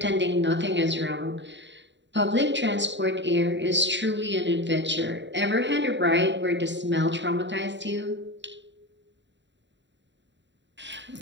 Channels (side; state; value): left; late; 0.52 ms